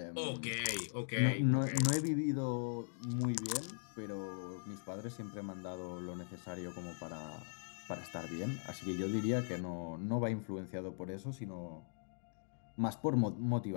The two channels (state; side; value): silent; right; digital silence